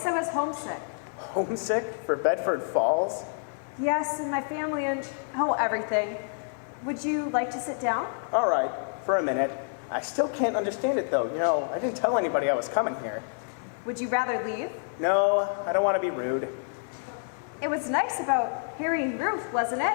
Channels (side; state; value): right; silent; digital silence